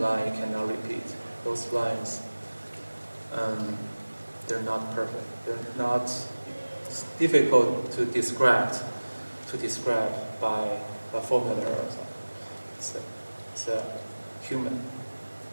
cannot repeat. Those lines, they're not perfect. They're not. It's difficult to describe by a formula or something. It's a human.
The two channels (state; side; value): inverted; both; correlation -1.00